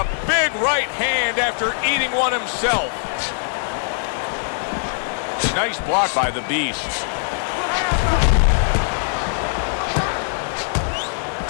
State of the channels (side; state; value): right; silent; digital silence